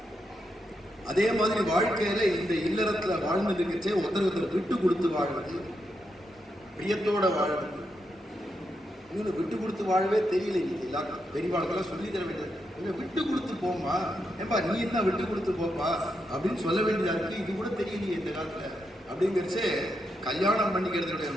அதே மாதிரி வாழ்க்கையில இந்த இல்லறத்துல வாழ்ந்துருக்கச்சே ஒருத்தர் விட்டு கொடுத்து வாழ்வது, பிரியத்தோட வாழ்வது. இன்னும் விட்டு கொடுத்து வாழவே தெரியல. இன்னைக்கு எல்லாரும் பெரியவாழ்க்கெல்லாம் சொல்லி தர வேண்டியது, விட்டு கொடுத்து போமா, ஏப்பா நீ என்ன விட்டு கொடுத்து போப்பா அப்படின்னு சொல்ல வேண்டியதா இருக்கு. இது கூட தெரியலையே இந்த காலத்துல அப்படிங்கிறச்சே. கல்யாணம் பண்ணிக்கிறதுடைய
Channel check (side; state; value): both; normal; correlation 0.83